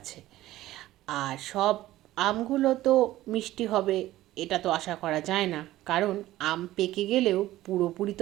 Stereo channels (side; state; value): left; quieter; 15.4 dB